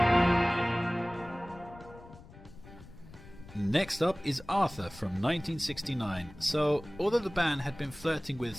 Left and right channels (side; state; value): left; noise; rumble, 19 dB below the sound